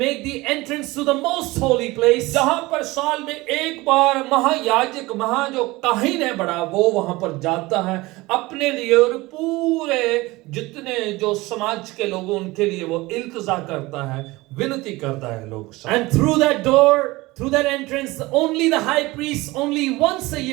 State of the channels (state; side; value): quieter; left; 20.9 dB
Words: the entrance to the most holy place. जहां पर साल में एक बार महायाजक, जो काहिन है बड़ा, वो वहां पर जाता है अपने लिए और पूरे जितने जो समाज के लोग उनके लिए वो इल्तिजा करता है, विनती करता है लोग. And through that door, through that entrance, only the high priest, only once a